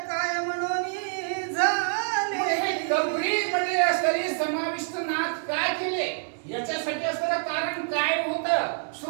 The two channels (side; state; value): left; silent; 60 dB below the other